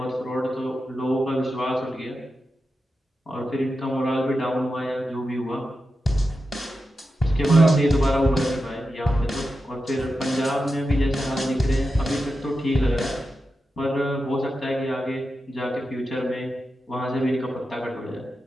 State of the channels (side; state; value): both; normal; correlation 0.90